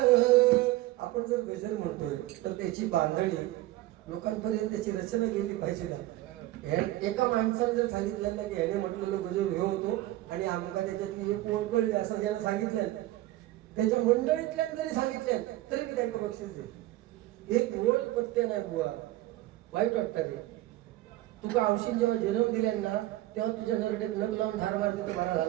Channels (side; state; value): left; quieter; 16.7 dB